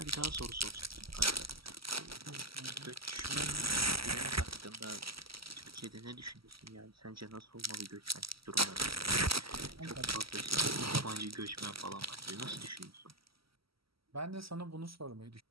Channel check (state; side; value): late; left; 0.75 ms